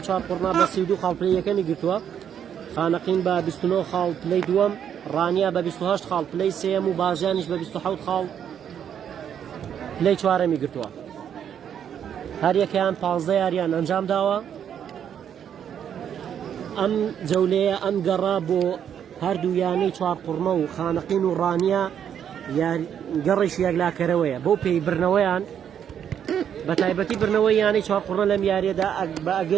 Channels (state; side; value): quieter; left; 8.8 dB